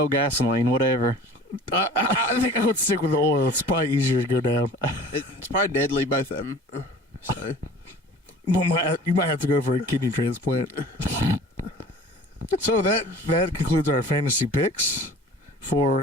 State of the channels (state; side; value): normal; both; correlation 0.45